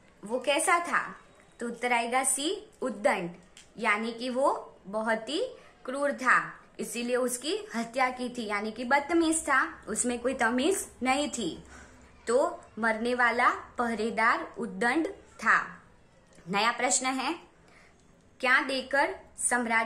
वो कैसा था? तो उत्तर आएगा सी उद्दंड, यानी कि वो बहुत ही क्रूर था, इसीलिए उसकी हत्या की थी। यानी कि बदतमीज था, उसमें कोई तमीज नहीं थी। तो मरने वाला पहरेदार उद्दंड था। नया प्रश्न है, क्या देकर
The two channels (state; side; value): identical; both; correlation 1.00